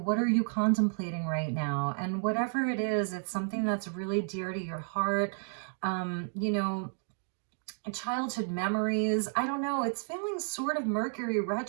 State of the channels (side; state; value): left; silent; 57 dB below the other